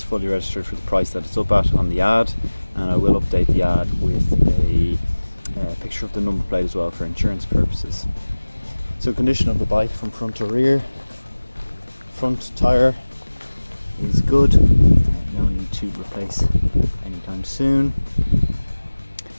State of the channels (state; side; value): inverted; both; correlation -1.00